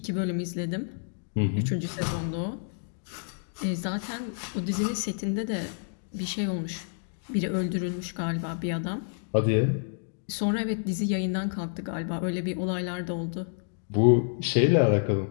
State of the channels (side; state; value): right; silent; digital silence